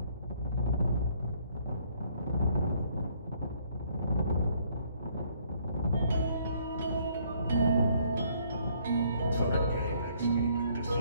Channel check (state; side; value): inverted; both; correlation -0.65